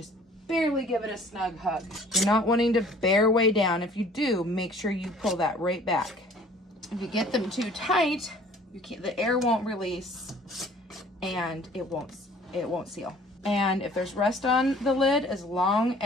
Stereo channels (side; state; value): both; normal; correlation 0.53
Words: barely give it a snug hug. You're not wanting to bear way down. If you do, make sure you pull that right back. If you get them too tight, the air won't release and it won't seal. And if there's rust on the lid, as long